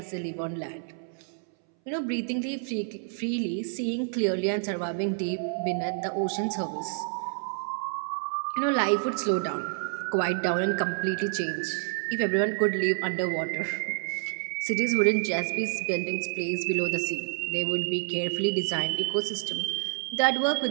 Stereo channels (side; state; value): left; silent; 59 dB below the other